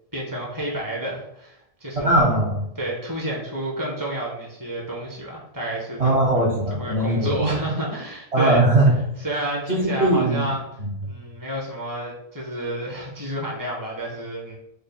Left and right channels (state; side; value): late; left; 1.7 ms